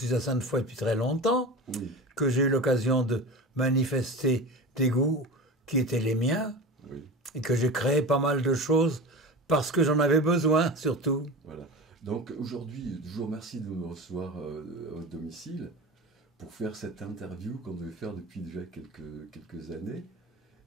à Sainte-Foy depuis très longtemps, Oui, que j'ai eu l'occasion de manifester des goûts qui étaient les miens, oui, et que j'ai créé pas mal de choses parce que j'en avais besoin, surtout. voilà. Donc aujourd'hui, je vous remercie de me recevoir à votre domicile pour faire cette interview qu'on devait faire depuis déjà quelques années.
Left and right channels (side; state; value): both; normal; correlation 0.31